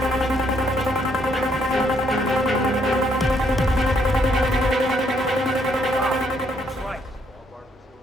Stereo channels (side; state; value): both; normal; correlation 0.71